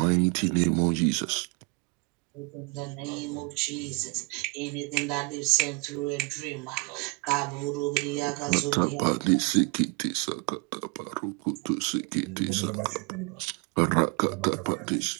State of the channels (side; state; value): left; quieter; 30.8 dB